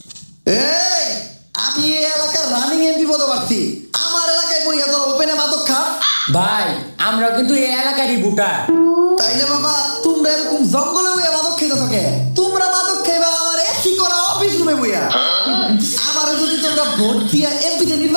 এই আমি এই এলাকার রানিং এমপি পদপ্রার্থী, আমার এলাকায় বইয়া তোর ওপেনে মাদক খা। ভাই আমরা কিন্তু এই এলাকারই ভোটার। তাইলে বাবা তোমরা এরকম জঙ্গলে বইয়া মাদক খেতে থাকে, তোমরা মাদক খাইবা আমার এসি করা অফিস রুমে বইয়া। আমার যদি তোমরা ভোট দিয়া এমপিতে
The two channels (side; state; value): both; inverted; correlation -1.00